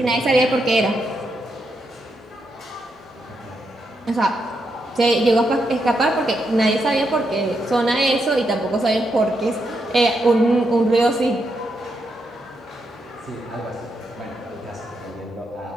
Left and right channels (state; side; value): normal; both; correlation 0.82